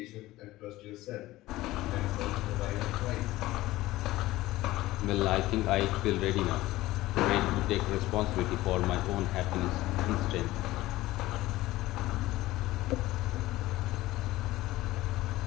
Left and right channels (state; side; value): quieter; right; 17.3 dB